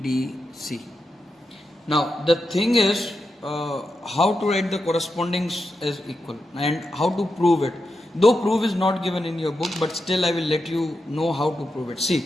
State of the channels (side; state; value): both; normal; correlation 0.87